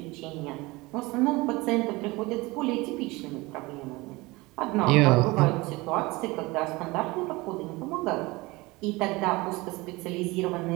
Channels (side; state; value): left; quieter; 22.4 dB